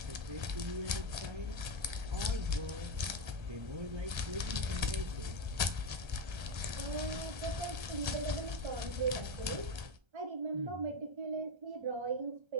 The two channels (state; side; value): late; left; 1.3 ms